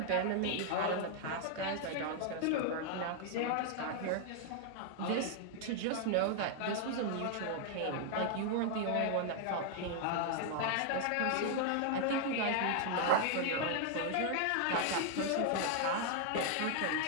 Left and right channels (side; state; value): both; different; correlation 0.00